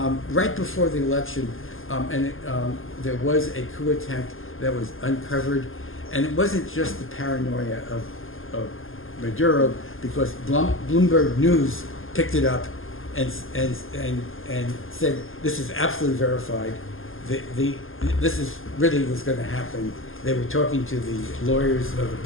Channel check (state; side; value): late; right; 0.59 ms